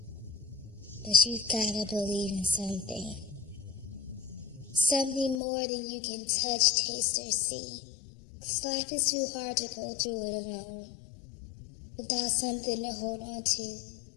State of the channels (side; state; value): right; drops out; at 5.4 s